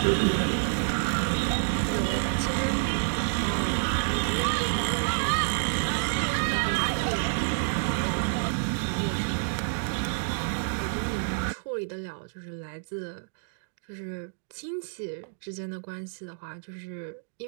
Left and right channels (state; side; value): silent; left; digital silence